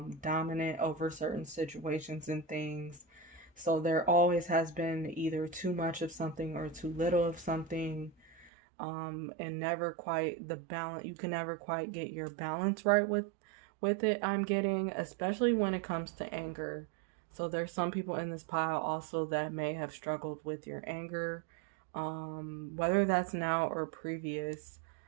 dominant over certain situations and things. So there always has been either too much of something or too little of something, and never quite the balance. You can never quite get your balance right with it. I'm getting, especially when it comes to anger. So there's some people in this pile also that may have struggled with your anger, whether that's now or previous.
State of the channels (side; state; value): left; drops out; at 8.5 s